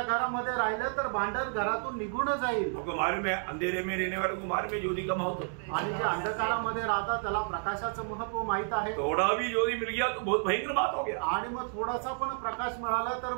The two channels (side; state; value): left; silent; 57 dB below the other